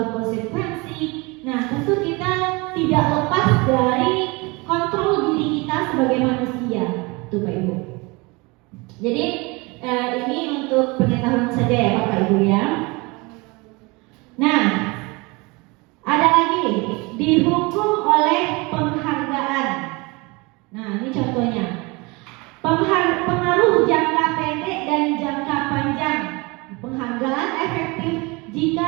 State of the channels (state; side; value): quieter; left; 26.1 dB